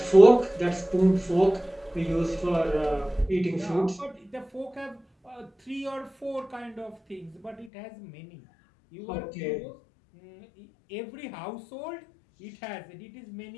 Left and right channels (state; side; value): drops out; right; at 7.7 s